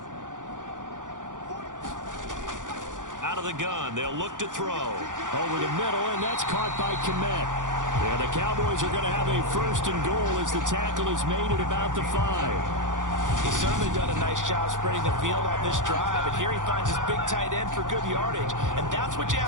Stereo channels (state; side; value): late; left; 0.87 ms